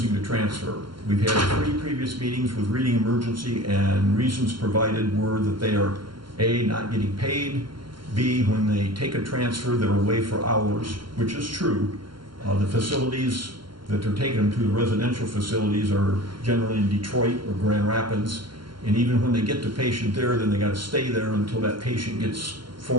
to transfer. We've had 3 previous meetings with Reading Emergency, and reasons provided were that they are A, not getting paid, B, when they take a transfer, they're away for hours, which is true. The facilities that they're taking them to, the residential facilities, are generally in Detroit or Grand Rapids, and even when they get the patient there, then they got to stay there until that patient gets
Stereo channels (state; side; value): late; left; 0.73 ms